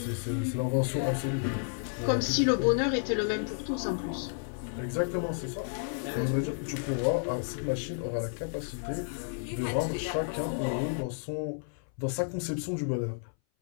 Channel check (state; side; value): silent; right; 57 dB below the other